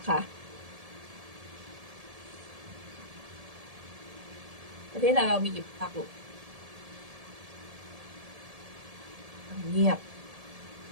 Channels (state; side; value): late; left; 1.7 ms